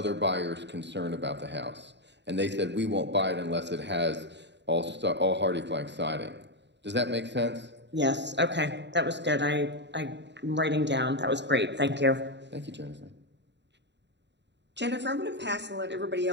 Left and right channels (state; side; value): late; left; 0.51 ms